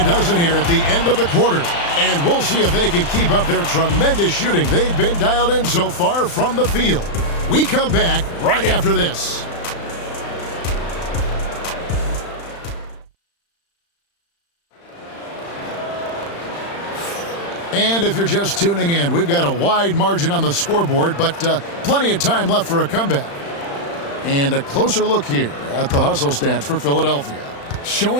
dozen here at the end of the quarter. And we'll see if they can keep up their tremendous shooting they've been dialed in so far from the field. We come back right after this. And if you're just tuning in, we've got a wide margin on the scoreboard, but plenty of time left for a comeback. And a closer look here at the hustle stats for Philadelphia.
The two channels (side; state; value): right; late; 35 ms